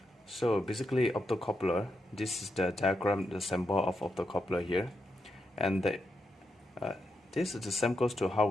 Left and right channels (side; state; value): both; normal; correlation 0.84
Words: So basically, optocoupler. This is the diagram, the symbol of optocoupler here, and this is the same goes to how